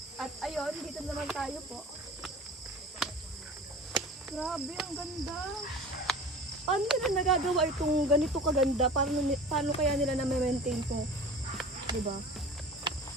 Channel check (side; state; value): both; normal; correlation 0.39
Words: At ayun, dito naman tayo po. Grabe, ang ganda. Paano nila nagagawa itong ganito kaganda? Paano kaya nila na-maintain to? Diba?